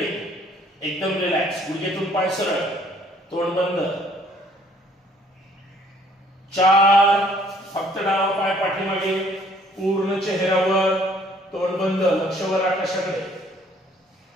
एकदम रिलॅक्स, गुडघ्यातून पाय सरळ, तोंड बंद। चार फक्त डावा पाय पाठीमागे, पूर्ण चेहऱ्यावर, तोंड बंद, लक्ष वर आकाशाकडे।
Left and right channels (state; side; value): normal; both; correlation 0.60